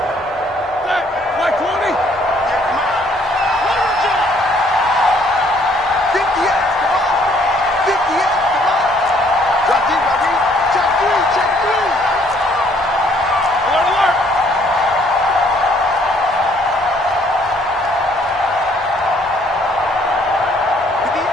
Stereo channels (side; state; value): both; normal; correlation 0.63